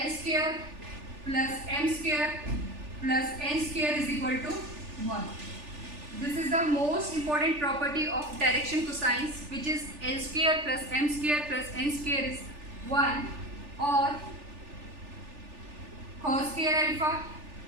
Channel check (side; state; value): left; late; 3.4 ms